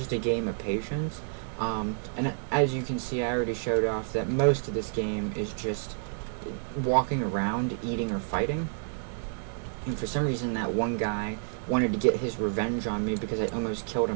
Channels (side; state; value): left; silent; 58 dB below the other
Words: a game of patience. And as you can see, I already showed off that most of this game is just walking around, eating, or fighting. And for some reason, that one guy wanted to get his revenge on me because I almost killed